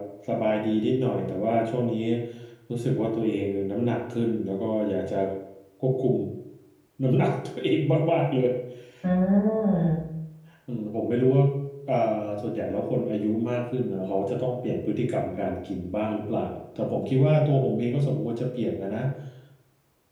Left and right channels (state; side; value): identical; both; correlation 1.00